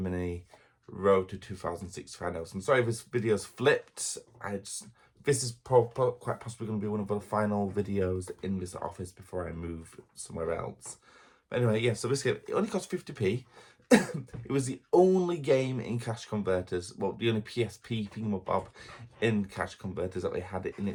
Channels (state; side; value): identical; both; correlation 1.00